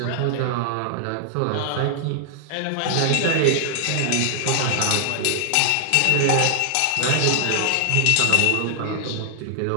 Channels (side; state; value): both; different; correlation 0.00